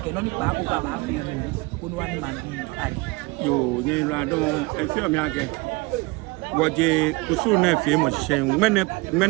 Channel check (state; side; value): quieter; left; 24.7 dB